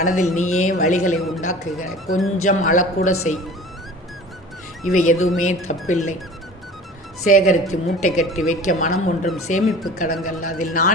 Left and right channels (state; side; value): normal; both; correlation 0.42